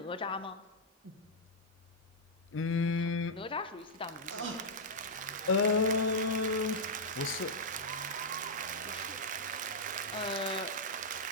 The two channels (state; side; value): normal; both; correlation -0.07